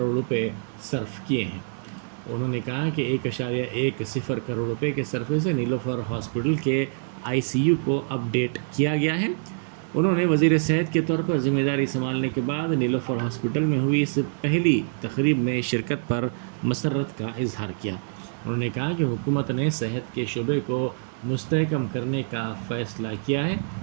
روپے صرف کیے ہیں۔ انہوں نے کہا کہ 1.10 کروڑ روپے کے صرفے سے نیلوفر ہاسپٹل کے ICU کو اپ ڈیٹ کیا گیا ہے۔ انہوں نے وزیر صحت کے طور پر ذمہ داری سنبھالنے کے بعد نیلوفر ہاسپٹل میں ہوئی اس پہلی تقریب میں شرکت پر مسرت کا اظہار کیا۔ انہوں نے کہا کہ حکومت نے صحت کے شعبے کو مستحکم کرنے کا فیصلہ کیا ہے۔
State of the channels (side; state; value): left; silent; 61 dB below the other